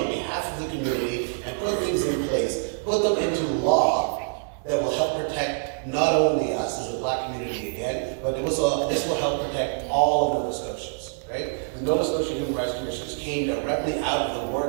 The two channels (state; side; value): silent; left; digital silence